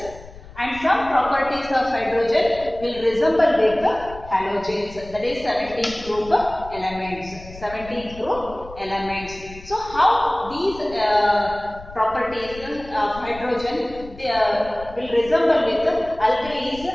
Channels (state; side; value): noise; left; rumble, 17 dB below the sound